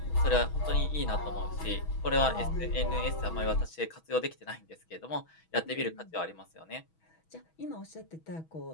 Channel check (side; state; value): right; late; 6.2 ms